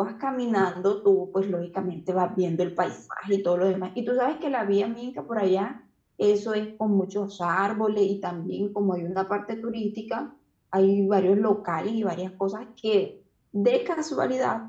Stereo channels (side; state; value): both; identical; correlation 1.00